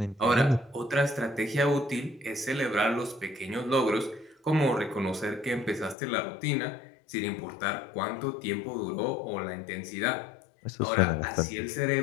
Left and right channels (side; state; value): right; drops out; at 6.0 s